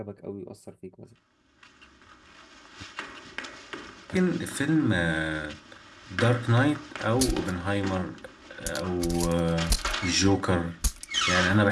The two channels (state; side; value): identical; both; correlation 1.00